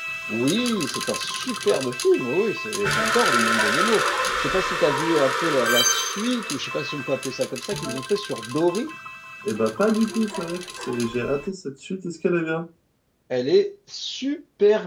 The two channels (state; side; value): identical; both; correlation 1.00